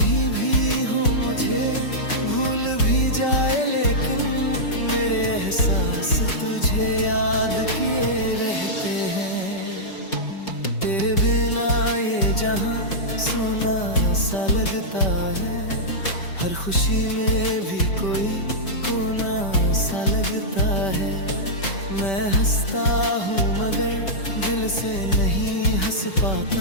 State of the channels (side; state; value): right; late; 5.2 ms